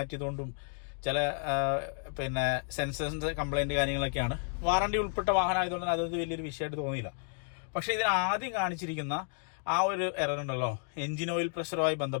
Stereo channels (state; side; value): silent; right; 56 dB below the other